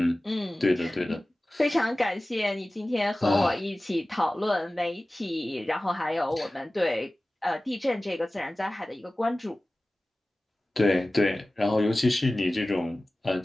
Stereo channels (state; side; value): normal; both; correlation 0.97